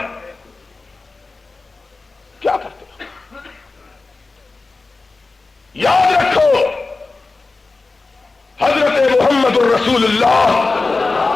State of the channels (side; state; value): right; quieter; 3.7 dB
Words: کیا کرتے ہو؟ یاد رکھو حضرت محمد الرسول اللہ